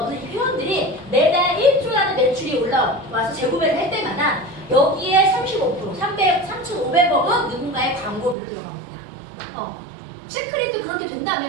이 회원들이 매달 1조라는 매출이 올라와서 재구매를 할 때마다 여기에 35%, 3,500억은 누군가의 광고비로 들어갑니다. 시크릿도 그렇게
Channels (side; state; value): left; drops out; at 8.3 s